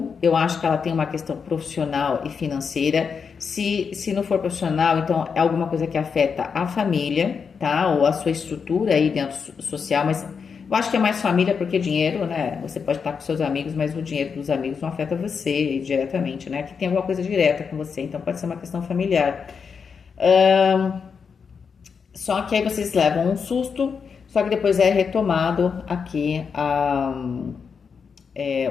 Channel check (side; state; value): right; quieter; 6.0 dB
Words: Eu acho que ela tem uma questão profissional e financeira. Se não for profissional, então é alguma coisa que afeta a família, tá? Ou a sua estrutura aí dentro social, mas eu acho que é mais família porque dinheiro, né? Você pode estar com seus amigos, mas o dinheiro dos amigos não afeta você diretamente, né? Que tem alguma coisa direta com você, então pode ser uma questão familiar. Só que aí vocês levam um susto, só que depois é retomado aqui